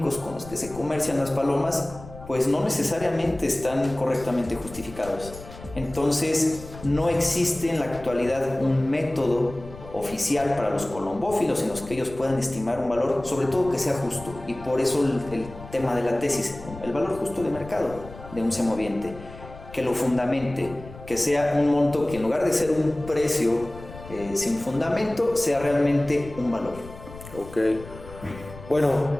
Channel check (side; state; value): left; noise; rumble, 16 dB below the sound